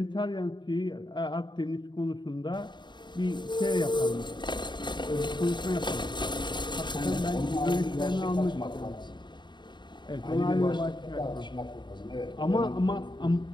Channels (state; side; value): late; right; 0.22 ms